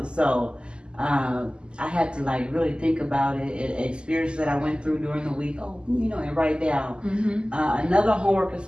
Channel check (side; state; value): left; late; 0.050 ms